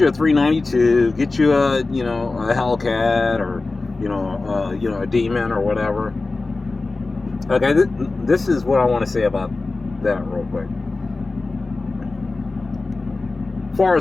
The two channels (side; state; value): right; quieter; 3.5 dB